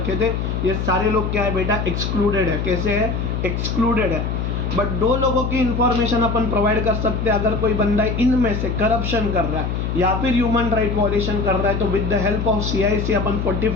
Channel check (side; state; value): left; noise; hum, 2 dB below the sound